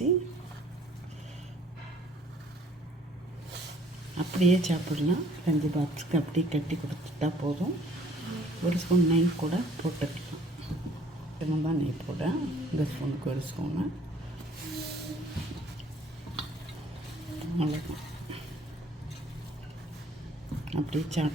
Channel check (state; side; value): normal; both; correlation 0.57